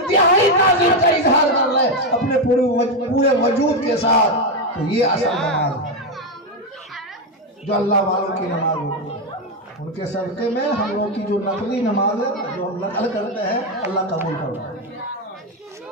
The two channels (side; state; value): both; normal; correlation 0.07